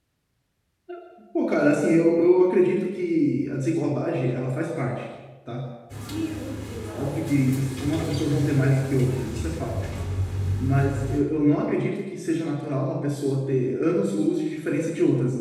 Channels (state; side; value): identical; both; correlation 1.00